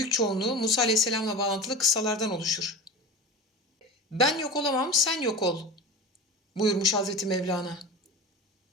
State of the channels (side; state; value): both; normal; correlation 0.30